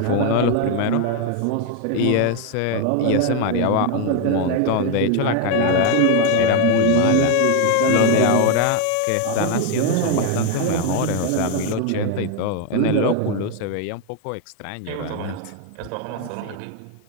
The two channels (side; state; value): both; different; correlation 0.01